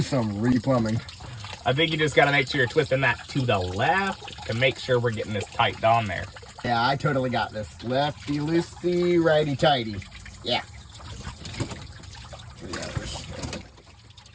some re-plumbing. I think you just gotta make sure you're twisting that to the left to make sure we're getting this tight on there. Yeah, I totally got this. Lefty loosey, righty tighty. Yeah.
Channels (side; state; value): both; identical; correlation 1.00